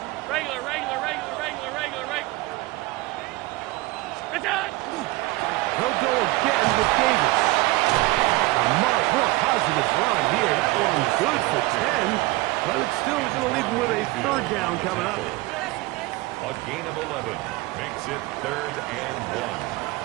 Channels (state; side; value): quieter; left; 20.7 dB